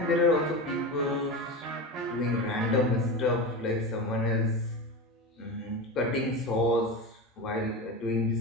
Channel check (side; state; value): both; normal; correlation 0.23